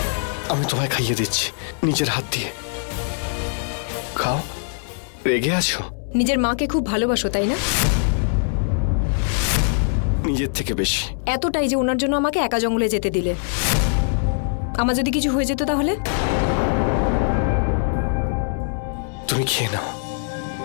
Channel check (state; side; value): silent; right; 62 dB below the other